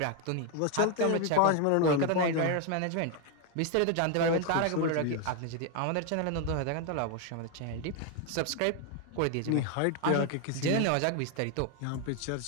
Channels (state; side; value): different; both; correlation 0.01